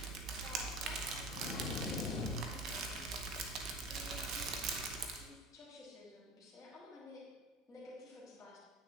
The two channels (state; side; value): normal; both; correlation 0.35